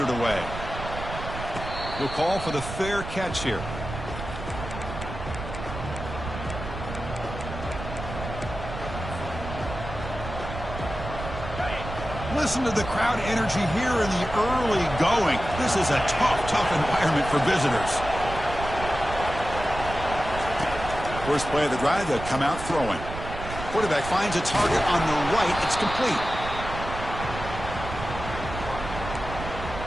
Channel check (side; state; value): right; noise; rumble, 8 dB below the sound